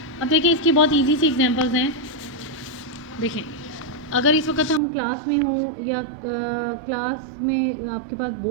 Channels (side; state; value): left; drops out; at 4.8 s